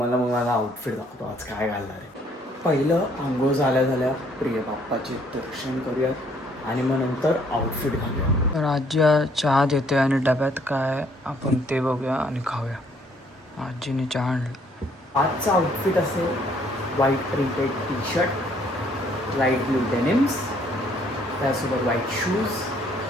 माझा आउटफिट दाखवतो आज काय घालणार आहे. पहिलं आंघोळ झाल्या प्रिय बाप्पाचे दर्शन करूयात आणि मग नंतर आउटफिट घालूया. तर आजी चहा देते आणि डब्यात काय आपण ते बघूया आणि खाऊया. आजीने चहा आणलं. आजचा आउटफिट असेल white printed T shirt, light blue denims, त्यासोबत व्हाईट शूज,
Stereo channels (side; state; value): both; normal; correlation 0.64